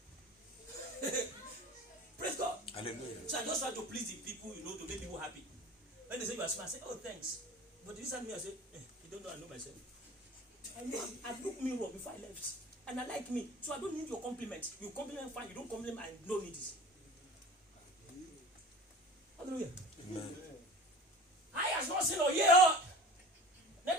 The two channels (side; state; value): both; normal; correlation 0.38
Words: Praise God. Hallelujah. So I just try to please the people, to make people happy. When they say you are smart, I say, oh, thanks. But this time I say, you don't know, I know myself. I know I look me wrong before I left. And I like me. So I don't need your compliment. You compliment fine, you don't compliment, I don't need it. Hallelujah. Amen. I has not seen or hear. Let